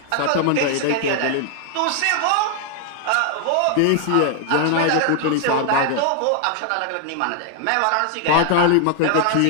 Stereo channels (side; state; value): both; different; correlation 0.00